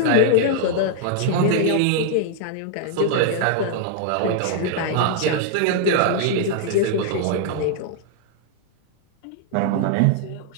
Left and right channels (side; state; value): both; different; correlation 0.00